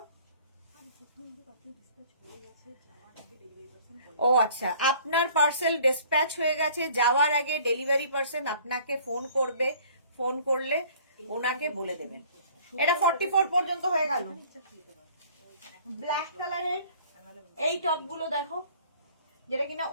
ও আচ্ছা, আপনার পার্সেল ডিসপ্যাচ হয়ে গেছে, যাওয়ার আগে ডেলিভারি পার্সন আপনাকে ফোন করবে, ফোন করলে ওনাকে বলে দেবেন। এটা 44 পর্যন্ত হয়ে গেল। ব্ল্যাক কালারের এই টপ গুলো দেখো, যেটা কিনা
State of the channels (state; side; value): inverted; both; correlation -0.53